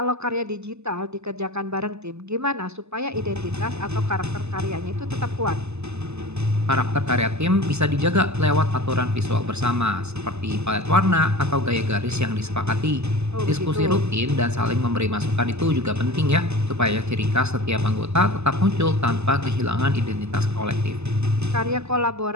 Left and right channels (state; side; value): late; left; 0.80 ms